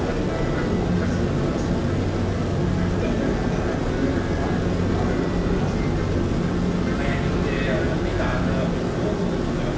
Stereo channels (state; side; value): identical; both; correlation 1.00